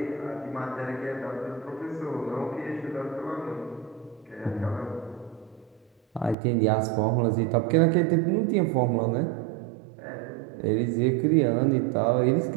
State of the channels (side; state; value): left; drops out; at 6.4 s